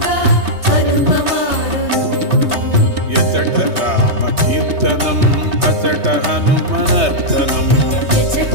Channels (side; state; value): left; late; 3.2 ms